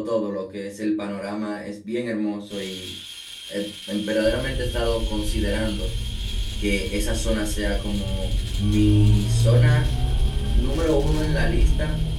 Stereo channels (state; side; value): identical; both; correlation 1.00